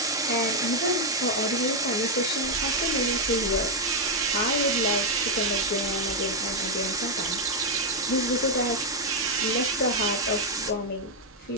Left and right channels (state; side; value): normal; both; correlation 0.01